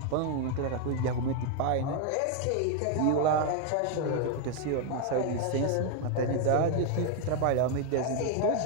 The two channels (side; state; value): both; different; correlation 0.01